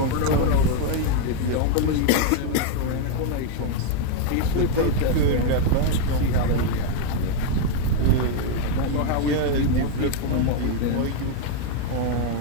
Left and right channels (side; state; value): both; different; correlation 0.00